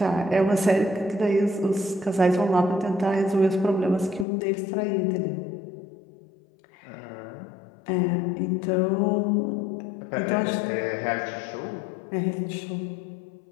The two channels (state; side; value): drops out; right; at 4.2 s